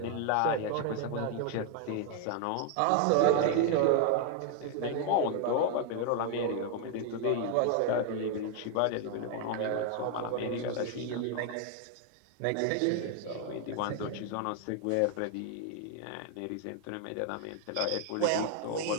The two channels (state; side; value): different; both; correlation 0.00